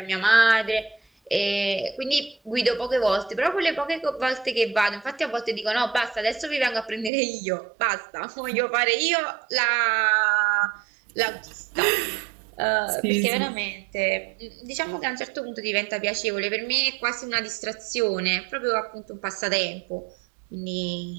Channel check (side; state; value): left; drops out; at 7.1 s